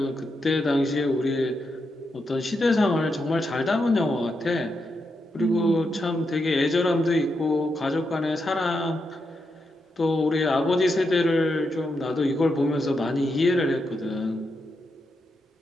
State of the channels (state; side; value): normal; both; correlation 0.84